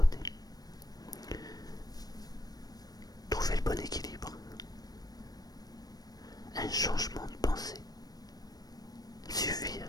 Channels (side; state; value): right; late; 0.19 ms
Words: Trouver le bon équilibre. Un changement